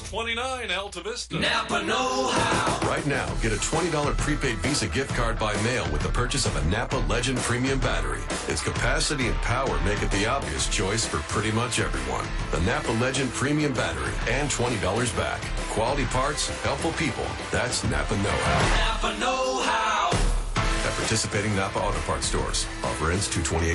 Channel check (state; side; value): identical; both; correlation 1.00